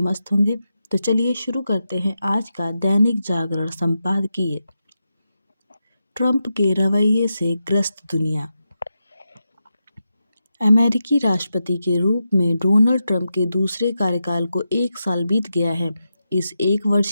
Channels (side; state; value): both; inverted; correlation -0.88